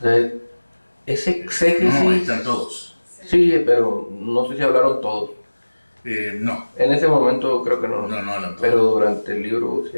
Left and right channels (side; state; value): both; inverted; correlation -1.00